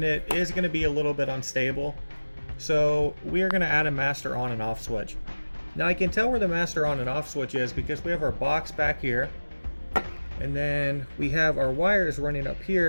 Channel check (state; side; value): inverted; both; correlation -1.00